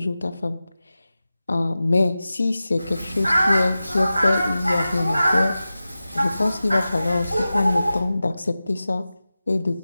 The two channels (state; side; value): inverted; both; correlation -0.94